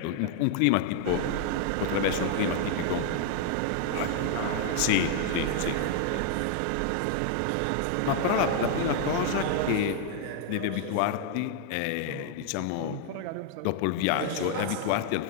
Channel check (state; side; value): different; both; correlation -0.01